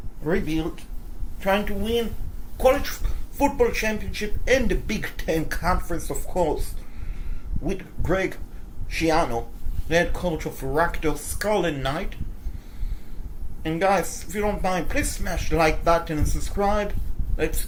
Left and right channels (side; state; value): both; identical; correlation 1.00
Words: rebuild. Trying to win college football championship and the Big Ten conference, of course. With Greg Schiano, the head coach of Rutgers Scarlet Knights. And guys, if you don't mind, please smash the like button and subscribe. Let's